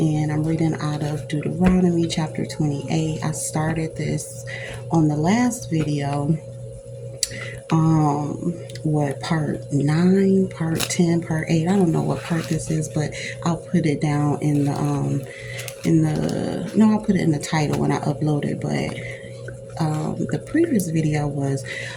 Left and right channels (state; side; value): identical; both; correlation 1.00